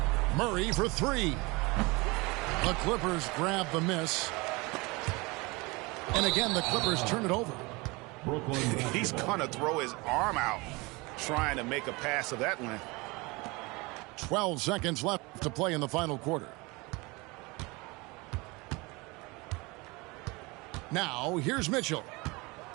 Murray for 3. The Clippers grab the miss. And again, the Clippers turn it over. He's going to throw his arm out trying to make a pass of that length. 12 seconds left to play in the final quarter. Now, here's Mitchell.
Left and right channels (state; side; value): quieter; left; 25.1 dB